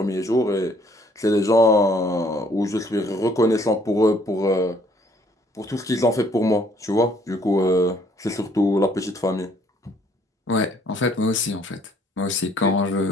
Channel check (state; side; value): normal; both; correlation 0.63